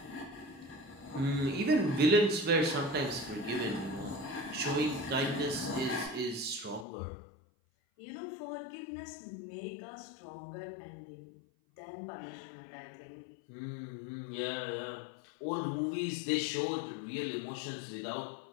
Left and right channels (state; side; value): drops out; right; at 6.9 s